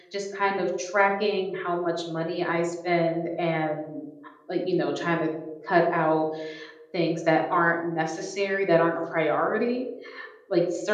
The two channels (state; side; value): identical; both; correlation 1.00